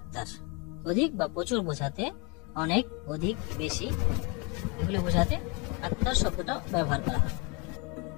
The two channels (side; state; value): right; quieter; 30.7 dB